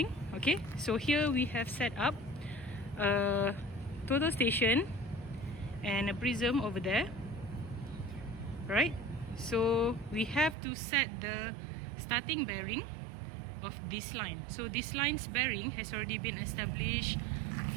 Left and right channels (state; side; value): drops out; left; at 10.6 s